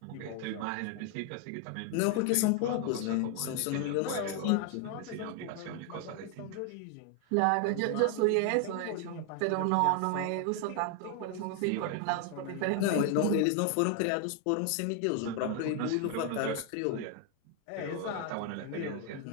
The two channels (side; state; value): both; different; correlation 0.00